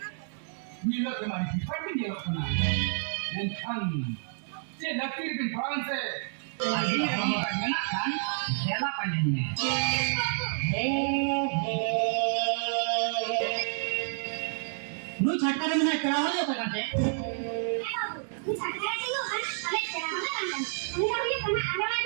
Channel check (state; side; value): silent; left; digital silence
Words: nilai kemana? Tapi nilai kemana? Dan kan, saya lakir di Fransa. Lagi orang nak kan, saya panjangnya. Nu छटकर में क्या हो जाता करते ini sakit dulu kan, kalian sekarang kan kan, ini kamu yang kena ada